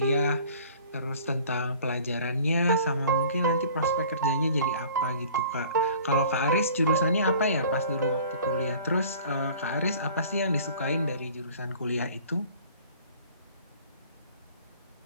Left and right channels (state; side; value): inverted; both; correlation -0.48